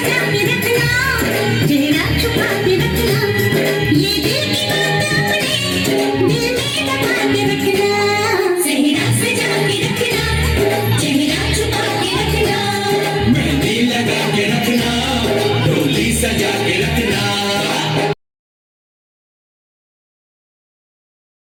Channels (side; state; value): both; identical; correlation 1.00